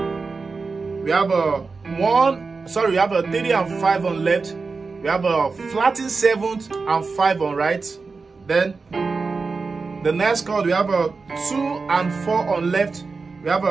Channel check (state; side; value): quieter; left; 4.4 dB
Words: have a 3 and 5 on left. We have a flattened 7th and 5 on right. Then the next chord, we have a 2 and 4 on left. We have